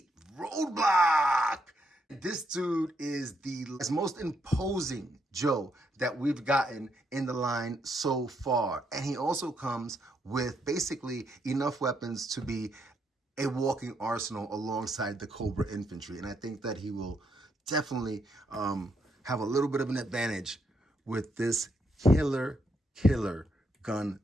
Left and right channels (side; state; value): both; normal; correlation 0.77